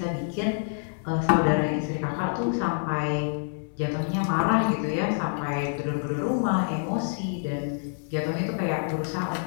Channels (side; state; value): right; silent; 60 dB below the other